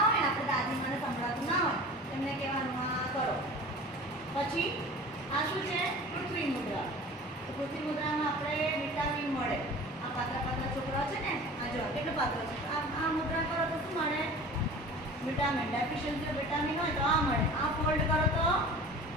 હોય ને, આપણે દાદી મને સંભળાતું ના હોય, એમને કહેવાનું આ કરો. પછી આ શું છે? પૃથ્વી મુદ્રા. તો પૃથ્વી મુદ્રામાં આપણે વિટામિન મળે. આ પાતળા પાતળા છોકરાઓ છે ને, આ જો કેટલું પાતળું છે. આ મુદ્રા કરો તો શું મળે? વિટામિન. ડેફિશિયન્સી વિટામિન હોય તો આ મળે. આ ફોલ્ડ કરો તો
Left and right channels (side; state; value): both; normal; correlation 0.40